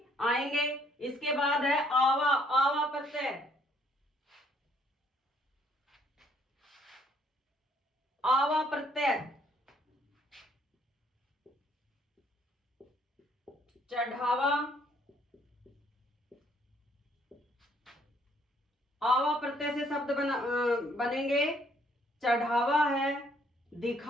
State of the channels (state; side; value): normal; both; correlation 0.66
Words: आएंगे। इसके बाद है आवा, आवा प्रत्यय, आवा प्रत्यय, चढ़ावा, आवा प्रत्यय से शब्द बनेंगे चढ़ावा है,